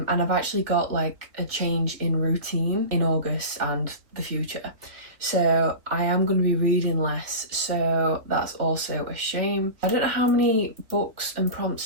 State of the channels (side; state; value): left; late; 3.3 ms